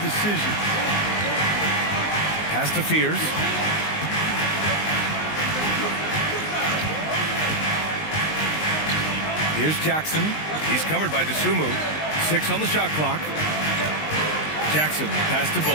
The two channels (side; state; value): right; late; 19 ms